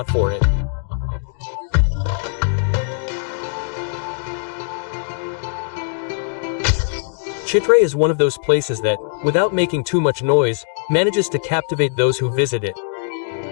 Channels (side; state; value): right; silent; digital silence